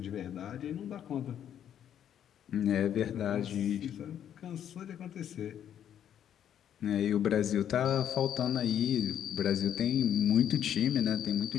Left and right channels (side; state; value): right; quieter; 9.8 dB